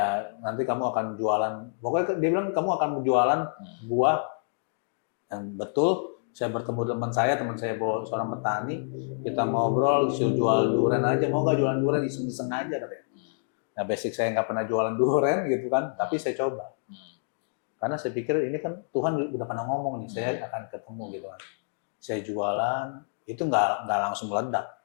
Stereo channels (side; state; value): right; silent; digital silence